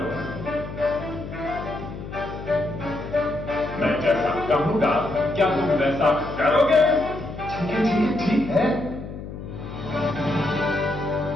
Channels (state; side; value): noise; left; hum, 10 dB below the sound